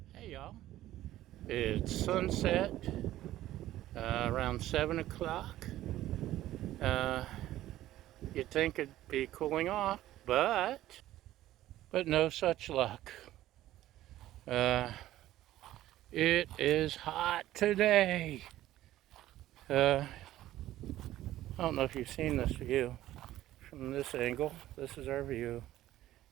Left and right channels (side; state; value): left; quieter; 14.3 dB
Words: Hey y'all, it's sunset around 7 o'clock. Uh, you'd think it'd be cooling off, but no such luck. Uh, it is hot today. I don't know if you've seen this view from this angle. This is our view.